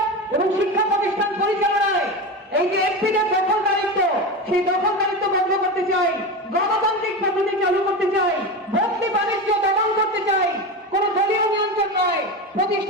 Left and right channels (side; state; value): both; normal; correlation 0.22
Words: এবং শিক্ষা প্রতিষ্ঠান পরিচালনায় এই যে এফপিদের দখলদারিত্ব, সেই দখলদারিত্ব বন্ধ করতে চাই, গণতান্ত্রিক পদ্ধতি চালু করতে চাই, ভর্তি বাণিজ্য দমন করতে চাই, কোন দলীয় নিয়ন্ত্রণ নয়,